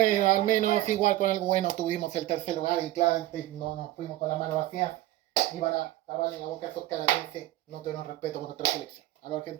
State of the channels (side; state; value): left; quieter; 15.8 dB